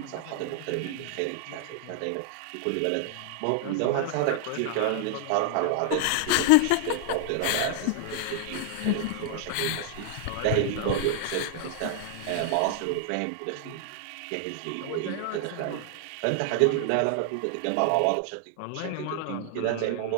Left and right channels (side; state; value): both; different; correlation 0.00